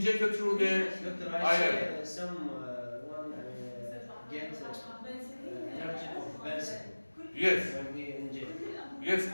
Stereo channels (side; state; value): both; inverted; correlation -1.00